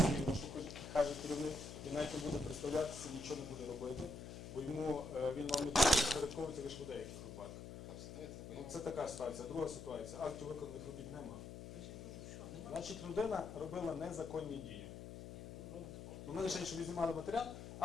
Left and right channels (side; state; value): left; noise; hum, 10 dB below the sound